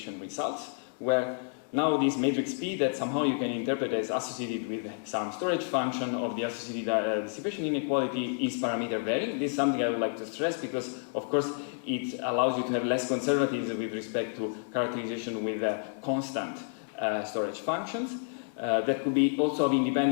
results, where now this matrix P that somehow you can interpret as associated with some storage function of the associated dissipation inequality is parameter varying. This is something I would like to stress because, of course, it allows you to have less conservatism with respect to characterization with constant storage functions. That could be also of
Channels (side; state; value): right; silent; 58 dB below the other